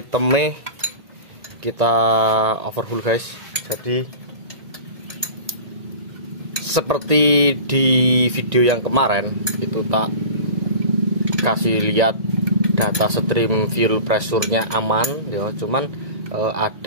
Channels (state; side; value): late; left; 1.9 ms